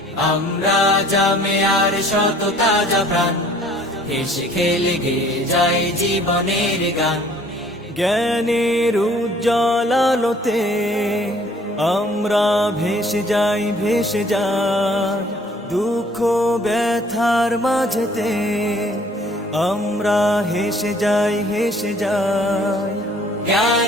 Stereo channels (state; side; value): normal; both; correlation 0.56